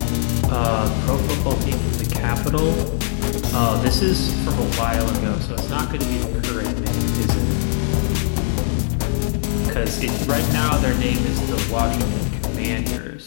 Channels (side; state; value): right; silent; digital silence